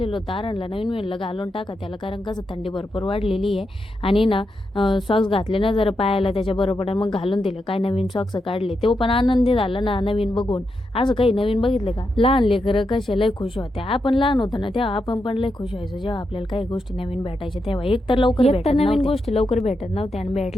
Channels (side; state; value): both; normal; correlation 0.85